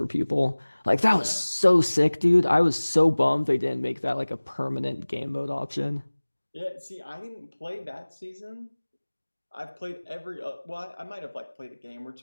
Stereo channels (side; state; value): both; inverted; correlation -1.00